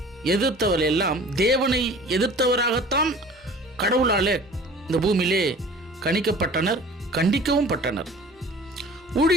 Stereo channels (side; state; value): both; normal; correlation 0.45